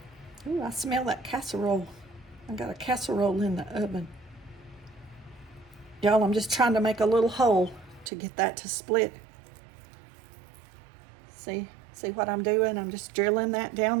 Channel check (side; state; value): left; drops out; at 8.1 s